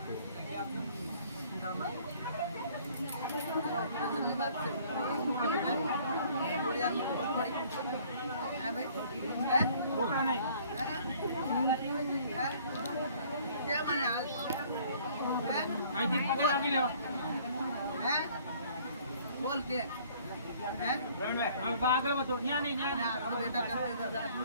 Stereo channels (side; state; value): both; inverted; correlation -0.56